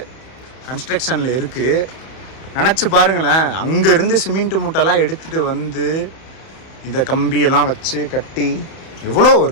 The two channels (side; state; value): right; late; 31 ms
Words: கன்ஸ்ட்ரக்ஷனில் இருக்குது. நினச்சி பாருங்களேன், அங்கேருந்து சிமெண்ட் மூட்டைலாம் எடுத்துகிட்டு வந்து இந்த கம்பியெல்லாம் வச்சு கட்டி எவ்வளோ